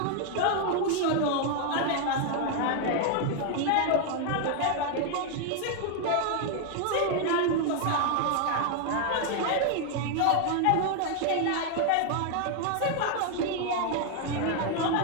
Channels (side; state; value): both; different; correlation 0.00